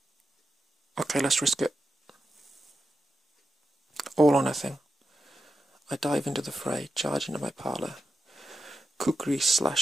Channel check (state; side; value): normal; both; correlation 0.89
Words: Okay, let's risk it. All or nothing. I dive into the fray, charge into my parlour. Kukri